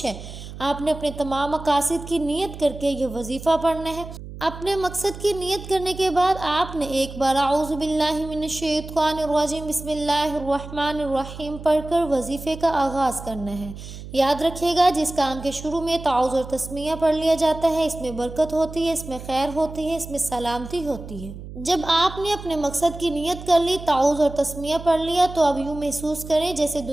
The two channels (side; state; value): right; noise; hum, 12 dB below the sound